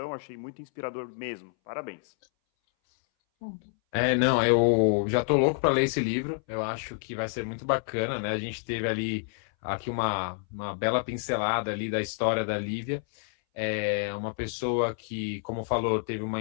Achei muito inspirador mesmo. Parabéns. Não, eu já tô louco para ler esse livro. Eu acho que vai ser muito bacana, né? A gente teve aqui uma bela pincelada ali da história da Lívia. É uma pessoa que, como falou, teve uma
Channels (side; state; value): right; silent; 59 dB below the other